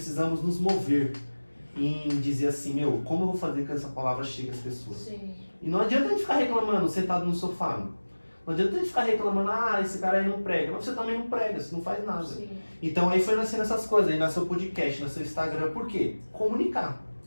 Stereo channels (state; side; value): inverted; both; correlation -1.00